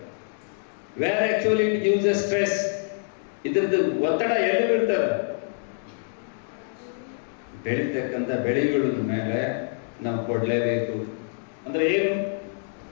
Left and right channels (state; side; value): silent; right; digital silence